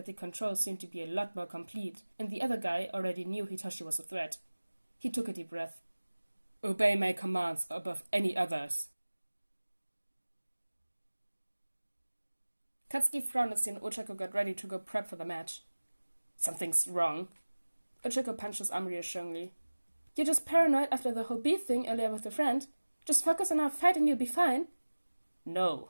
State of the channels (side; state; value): both; inverted; correlation -1.00